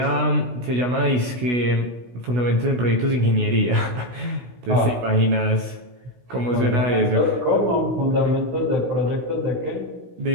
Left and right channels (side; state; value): left; late; 16 ms